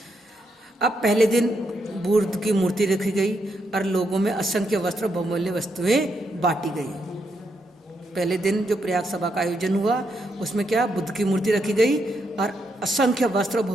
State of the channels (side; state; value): both; normal; correlation 0.80